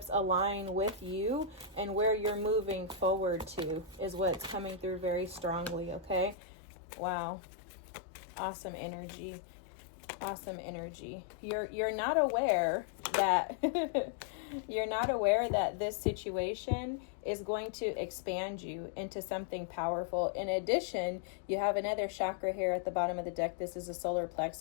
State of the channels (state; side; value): drops out; right; at 6.4 s